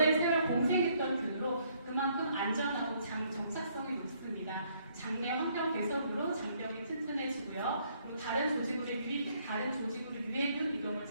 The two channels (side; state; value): both; inverted; correlation -0.68